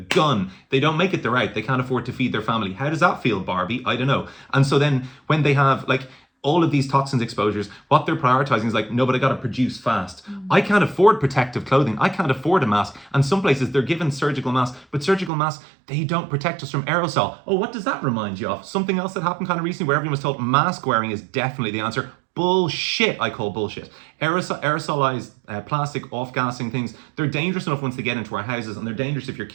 They don't make it, they're out. They can't afford to feed their family. How does that feel, Barbie? I don't know. And so then when they have like all of these toxins exposures, what they're prioritizing is like, no, but I got to produce fast. I can't afford protective clothing. I can't afford a mask. And some places they're given surgical masks, but surgical masks, they don't protect us from aerosol. Oh, what does that remind you of? Something else that happened kind of recently where everyone was told mask wearing is definitely the answer. Bullshit, I call bullshit. Aerosolized plastic off-gassing things, they're dangerous enough once they get into our houses, and they're dangerous if your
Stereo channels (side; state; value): left; drops out; at 15.3 s